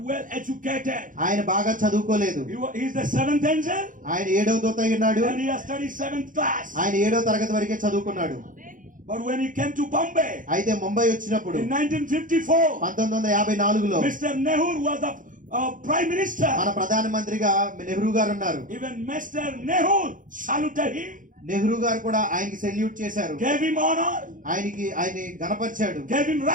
well educated. ఆయన బాగా చదువుకోలేదు. He is the 7th angel ఆయన 7వ దూత అయి ఉన్నాడు. and he has studied 7th class. ఆయన 7వ తరగతి వరకే చదువుకున్నాడు. But when he came to Bombay అయితే ముంబై వచ్చినప్పుడు in 1954, 1954లో Mr. Nehru was the prime minister. మన ప్రధానమంత్రిగా నెహ్రూ గారు ఉన్నారు. Even Mr. Nehru saluted him, Nehru గారు కూడా ఆయనకి సెల్యూట్ చేశారు. gave him honor, ఆయన్ని గణపరిచాడు. gave him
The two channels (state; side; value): late; left; 0.38 ms